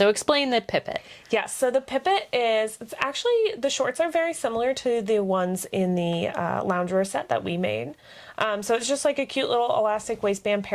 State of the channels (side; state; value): both; identical; correlation 1.00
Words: explain the Pipit. Yes, so the Pipit it's actually, the shorts are very similar to the ones in the loungewear set that we made. So it's just like a cute little elastic waistband